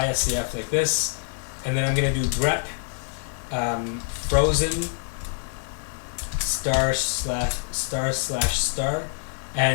like this, and then I'm going to do grep frozen */**,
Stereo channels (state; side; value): silent; right; 61 dB below the other